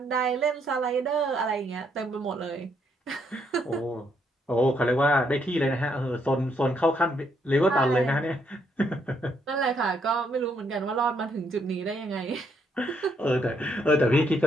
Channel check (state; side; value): normal; both; correlation 0.73